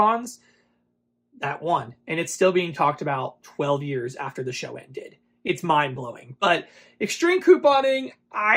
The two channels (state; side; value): identical; both; correlation 1.00